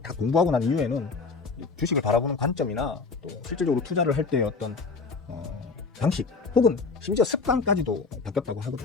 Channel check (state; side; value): quieter; right; 4.4 dB